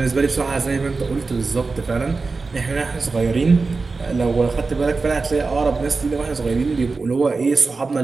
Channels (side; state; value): left; quieter; 4.1 dB